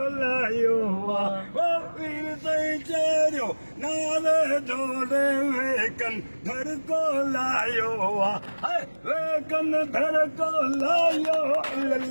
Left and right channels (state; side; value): inverted; both; correlation -1.00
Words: लायो वो वीर सही चेरियो नाले जोड़े वेकन धर को लायो वेकन धर को लायो